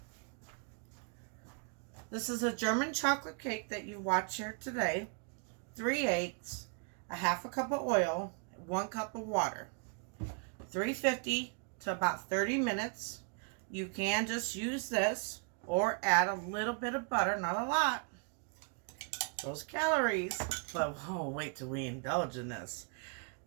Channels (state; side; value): quieter; left; 37.6 dB